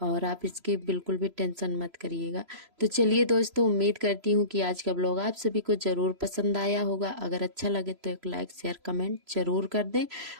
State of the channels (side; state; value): left; late; 3.0 ms